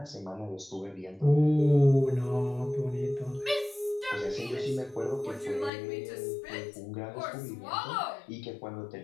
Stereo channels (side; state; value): right; drops out; at 5.7 s